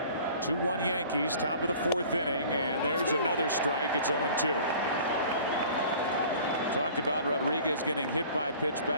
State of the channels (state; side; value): inverted; both; correlation -0.47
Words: 2-1 Yankees, top of the 4th inning, and there's another strike. It's 0-2. Talked about Rodriguez getting hit by a pitch